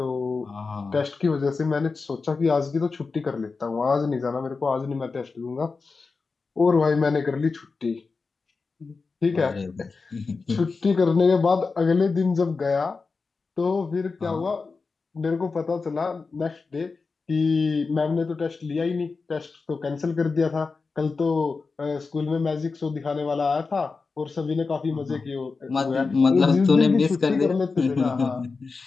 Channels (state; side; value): quieter; right; 4.4 dB